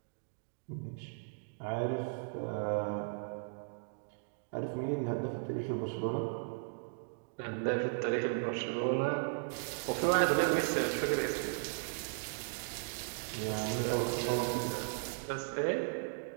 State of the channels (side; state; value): left; silent; digital silence